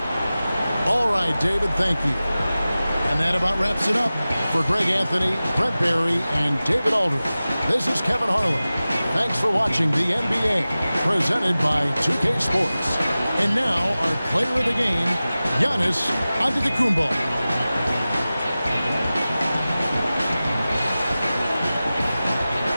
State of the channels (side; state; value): both; inverted; correlation -0.96